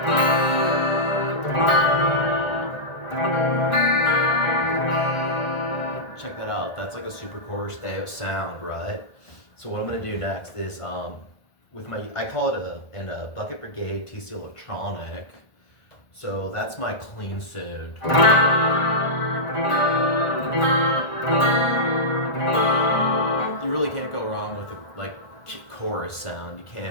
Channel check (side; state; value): right; late; 1.4 ms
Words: Check that out. That's like a super chorus sound, right? So what I'm gonna do next is with my I call it a Bucket Brigade TC Electronic. So that's my clean sound. You really can't go wrong with a like chorus sound. You